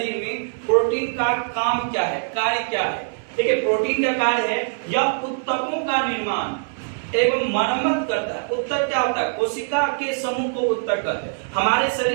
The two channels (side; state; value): left; silent; 64 dB below the other